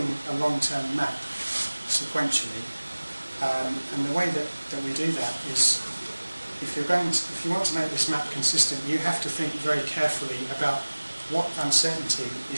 a long-term map sequentially, and the way that we do that is, if you want to make this map consistent, you have to think very carefully about what uncertainty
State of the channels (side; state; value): both; inverted; correlation -1.00